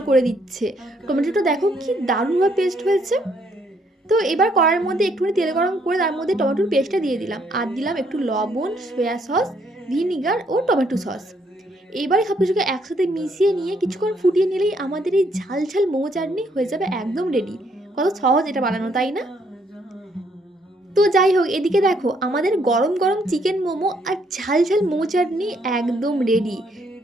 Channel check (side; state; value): both; normal; correlation 0.70